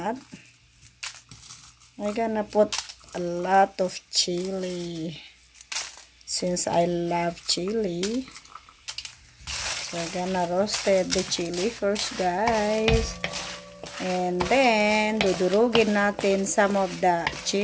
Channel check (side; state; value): both; identical; correlation 1.00